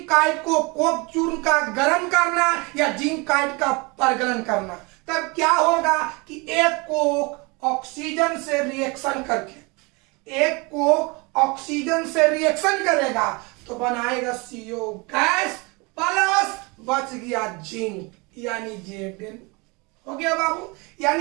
काइट को कोक चूर्ण का गर्म करना या जिंक काइट का परगलन करना, तब क्या होगा कि एक कोक ऑक्सीजन से रिएक्शन करके, एक कोक ऑक्सीजन से रिएक्शन करेगा तो बनाएगा CO गैस प्लस बच गया जिंक, यानी Zn हो गया बाबू।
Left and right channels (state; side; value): quieter; left; 27.7 dB